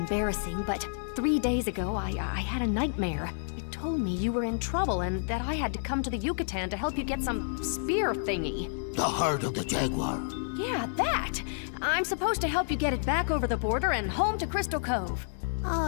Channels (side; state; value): right; silent; digital silence